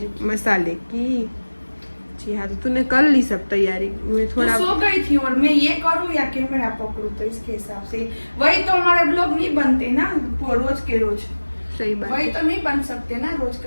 मसाले की। जी हाँ तो तूने कर ली सब तैयारी। मैं थोड़ा सो गई थी और मैं ये करूँ या कैमरा पकड़ूं, तो इसके हिसाब से वही तो हमारे ब्लॉग नहीं बनते ना रोज के रोज। सही बात वही है। तो नहीं बन सकते ना रोज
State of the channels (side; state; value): both; inverted; correlation -1.00